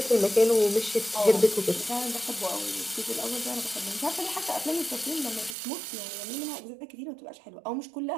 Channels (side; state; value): left; drops out; at 5.6 s